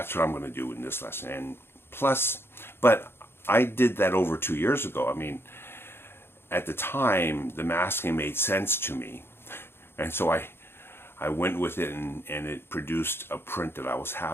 what I'm going to do in this lesson. And plus, but I did that over 2 years ago. I mean, at the time, the masking made sense to me. And so I went with it, and it produced a print that I was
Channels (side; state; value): right; late; 0.11 ms